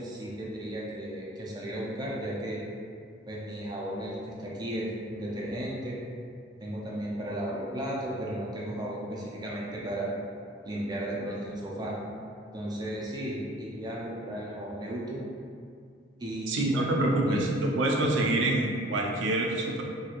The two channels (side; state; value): both; normal; correlation 0.49